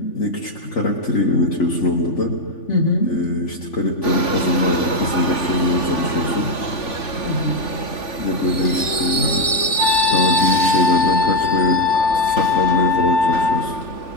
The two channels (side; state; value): right; late; 3.4 ms